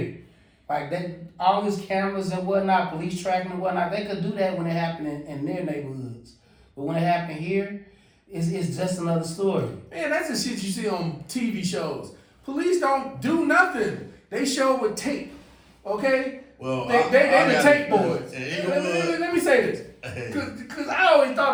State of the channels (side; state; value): both; identical; correlation 1.00